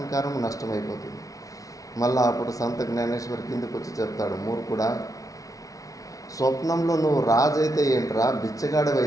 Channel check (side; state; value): right; late; 0.17 ms